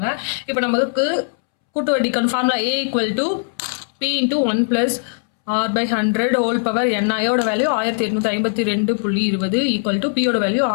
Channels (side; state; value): right; silent; 66 dB below the other